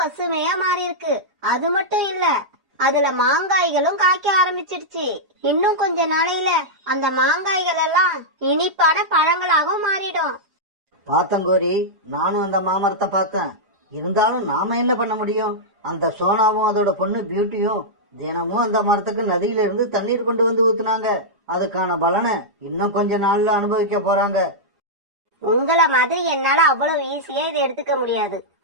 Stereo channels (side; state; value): left; late; 4.9 ms